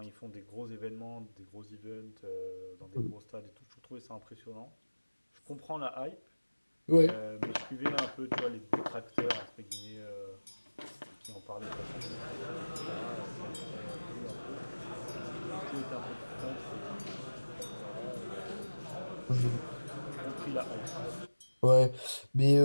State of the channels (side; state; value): both; inverted; correlation -1.00